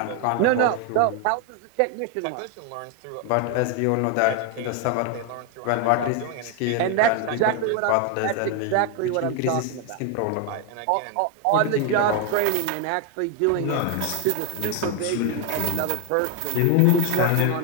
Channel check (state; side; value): different; both; correlation 0.01